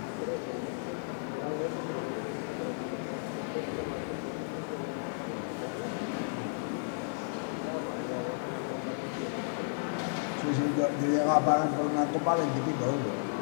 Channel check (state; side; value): silent; right; digital silence